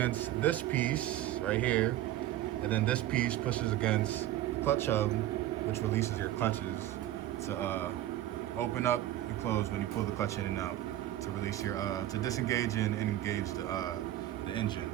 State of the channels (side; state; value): left; quieter; 13.8 dB